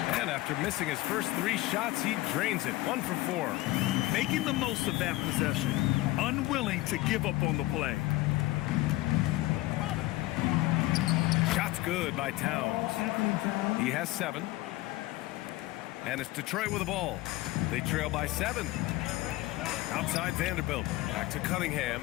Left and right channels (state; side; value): quieter; right; 18.4 dB